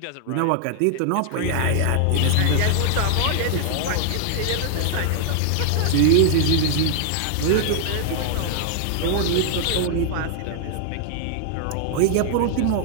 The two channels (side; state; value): both; different; correlation 0.00